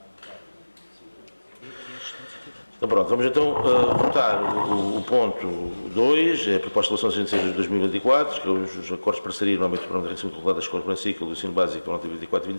Então pronto, vamos então votar o ponto 2, é a proposta de relação 66/2024, que é os acordos de parceria no âmbito do Programa de Enriquecimento Curricular da Escola do primeiro ciclo do ensino básico, por nota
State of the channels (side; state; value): both; inverted; correlation -1.00